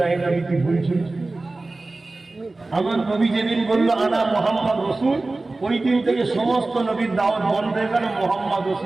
নবী কি বলছেন? আমার নবী যেদিন বললো আনা মুহাম্মদ রাসূল, ওই দিন থেকে সমস্ত নবীর দাওয়াত বন্ধ হয়ে গেল, মুহাম্মদ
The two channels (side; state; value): left; quieter; 3.2 dB